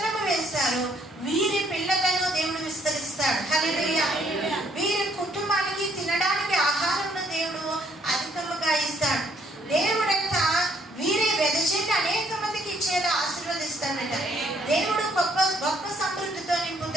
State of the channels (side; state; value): both; normal; correlation 0.67